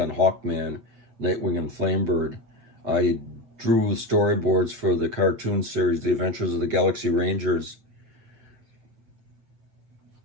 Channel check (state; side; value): late; left; 8.2 ms